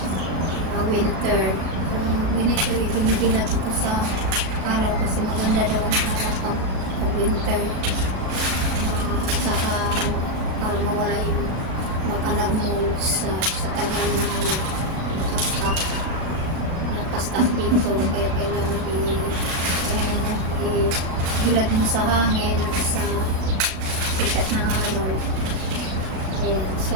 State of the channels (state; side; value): late; left; 36 ms